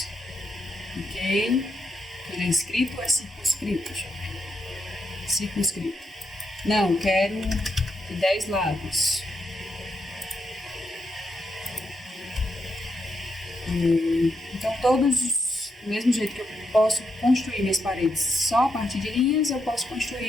Ok. Ele é inscrito ou é circunscrito? Deixa eu ver. Circunscrito. Não, quero 10 lados. Então, todos, do mesmo jeito que eu posso construir minhas paredes só a partir de linhas, eu posso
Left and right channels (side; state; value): both; normal; correlation 0.81